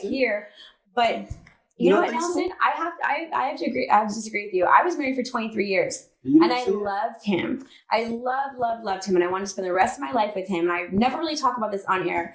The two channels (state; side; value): identical; both; correlation 1.00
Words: here, but You you know don't what, think so? Nelson? I have to agree. I have to disagree with you. I was married for 23 years, You and didn't I see it? loved him. I loved him, and I wanted to spend the rest of my life with him. And I never really talk about this on air,